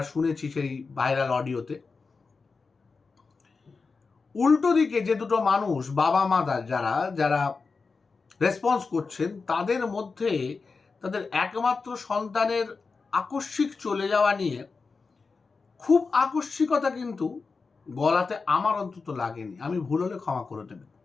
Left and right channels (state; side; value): quieter; right; 4.5 dB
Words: শুনেছি সেই ভাইরাল অডিওতে। উল্টো দিকে যে দুটো মানুষ, বাবা মা যারা রেসপন্স করছেন, তাদের মধ্যে তাদের একমাত্র সন্তানের আকস্মিক চলে যাওয়া নিয়ে খুব আকস্মিকতা কিন্তু গলাতে আমার অন্তত লাগেনি। আমি ভুল হলে ক্ষমা করে দেবেন,